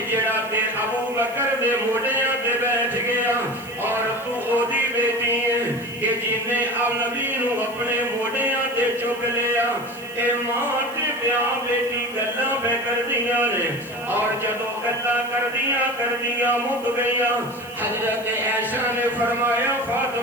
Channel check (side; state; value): right; noise; hiss, 21 dB below the sound